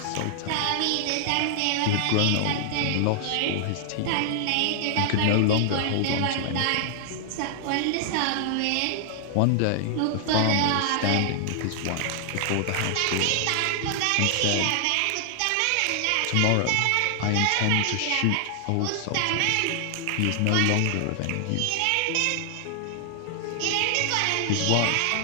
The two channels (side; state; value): both; different; correlation 0.00